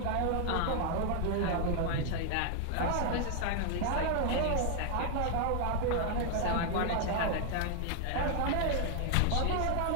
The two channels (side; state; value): both; different; correlation 0.00